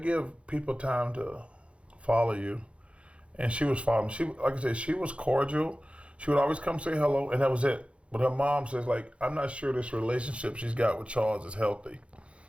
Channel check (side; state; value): left; late; 0.060 ms